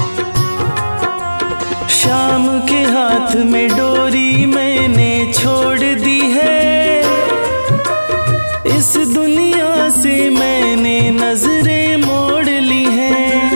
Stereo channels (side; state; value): both; inverted; correlation -1.00